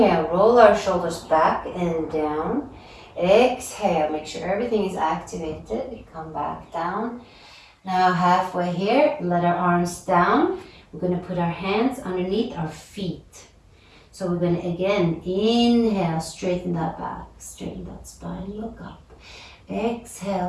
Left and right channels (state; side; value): identical; both; correlation 1.00